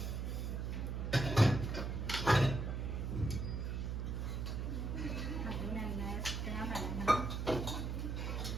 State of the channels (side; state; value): right; noise; hum, 2 dB below the sound